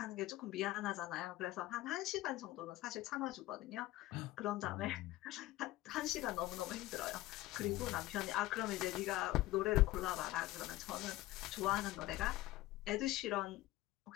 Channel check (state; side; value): quieter; right; 16.9 dB